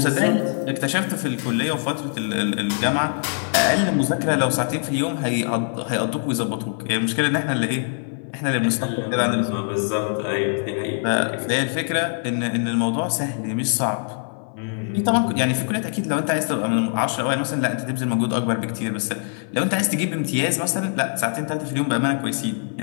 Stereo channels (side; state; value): right; silent; 58 dB below the other